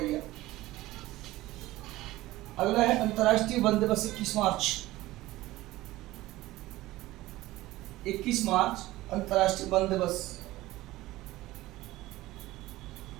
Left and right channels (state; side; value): quieter; left; 17.4 dB